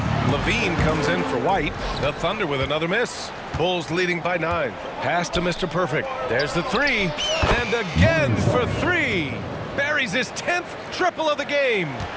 Levine comes in for White. The Thunder with another miss. Bulls leading by 9. Pass to Mr. Perfect. There's the 3. And again for 3. Buries his 10th triple of the game.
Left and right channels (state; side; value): identical; both; correlation 1.00